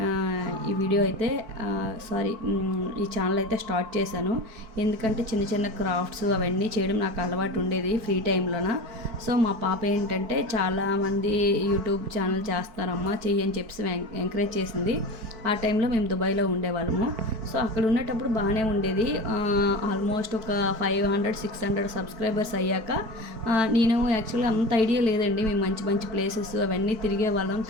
ఈ వీడియో అయితే ఈ ఛానల్ అయితే స్టార్ట్ చేశాను. ఎందుకంటే చిన్న చిన్న క్రాఫ్ట్స్ అవన్నీ చేయడం నాకు అలవాటు ఉండేది ఫ్రీ టైంలోన. సో మా పాప ఏంటంటే చాలామంది యూట్యూబ్ ఛానల్ చేస్తున్నారమ్మా, చెయ్యి అని చెప్పి ఎంకరేజ్ చేసింది. ఆ టైంలో మేము దుబాయ్లో ఉండేవాళ్ళము. సో అక్కడ ఉండేటప్పుడు బాగానే ఉండేది. ఆల్మోస్ట్ ఒక 500-600 సబ్స్క్రైబర్స్ అయ్యాక నేను యాక్చువల్గా అంత ఐడియా లేదండి. మేము మంచి మంచి ప్లేసెస్ అవన్నీ తిరిగే వాళ్ళం,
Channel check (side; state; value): left; late; 4.5 ms